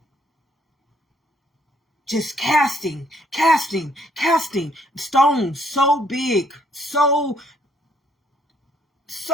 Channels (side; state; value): both; normal; correlation 0.68